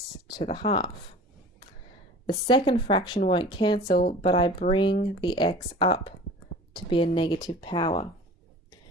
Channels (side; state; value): both; normal; correlation 0.41